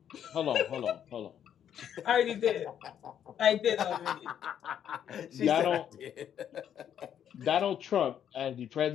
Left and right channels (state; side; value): quieter; right; 9.4 dB